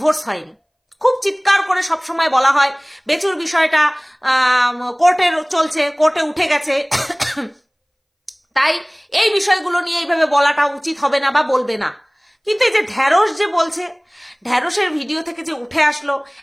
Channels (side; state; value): both; identical; correlation 1.00